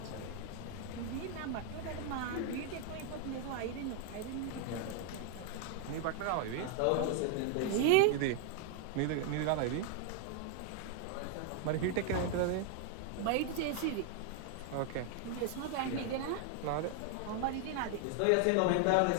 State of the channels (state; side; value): different; both; correlation 0.00